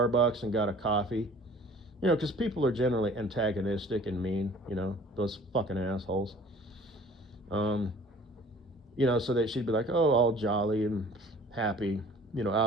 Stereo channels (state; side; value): normal; both; correlation 0.50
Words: and got a coffee, because people are generally antagonistic and mean, those fucking assholes. So that she'd be like, oh, all jolly and happy,